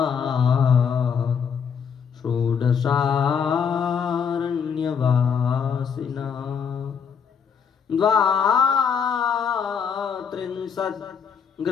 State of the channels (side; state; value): right; quieter; 6.8 dB